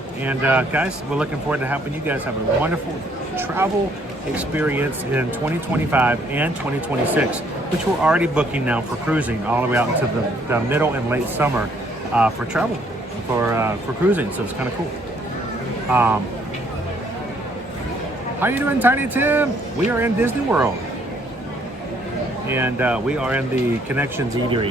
And guys, we're looking forward to helping you guys have a wonderful travel experience in 2025 and 2026, which we're already booking now for cruising all the way out into the middle and late summer for travel, for cruising. So it's kind of cool. How you doing, Tiny Tim? We are in Disney World. And we are in the Connections Eatery.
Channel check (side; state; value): both; normal; correlation 0.66